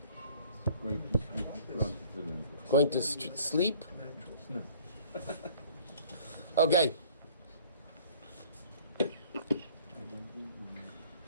Going to sleep? Okay.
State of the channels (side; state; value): both; inverted; correlation -0.53